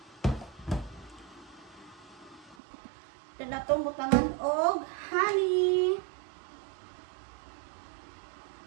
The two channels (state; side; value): drops out; left; at 2.6 s